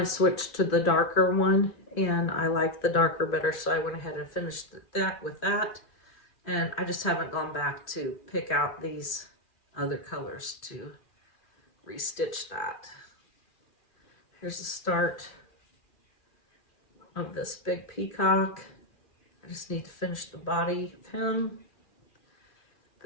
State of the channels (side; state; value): right; late; 2.4 ms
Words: switched to the darker one, and I liked the darker better, so I went ahead and finished that with that. And I just haven't gone back to pick out these other colors to restitch that. Here's the start of this big peacock. I just need to finish the body of him.